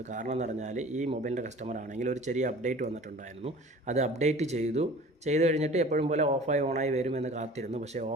കാരണം എന്ന് പറഞ്ഞാൽ ഈ മൊബൈലിൻ്റെ കസ്റ്റമർ ആണെങ്കിൽ ഒരു ചെറിയ അപ്ഡേറ്റ് വന്നിട്ടുണ്ടായിരുന്നു. അത് അപ്ഡേറ്റ് ചെയ്ത് കഴിഞ്ഞിട്ട് എപ്പോഴും പോലെ ഓഫായി ഓണായി വരുമെന്ന് കാത്തിരുന്നു. പക്ഷേ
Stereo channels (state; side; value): normal; both; correlation 0.44